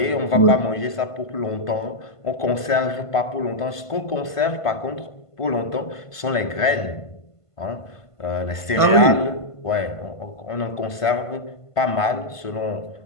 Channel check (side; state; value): right; late; 1.5 ms